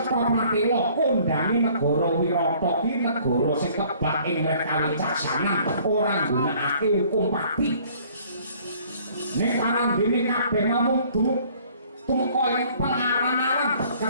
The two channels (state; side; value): inverted; both; correlation -0.57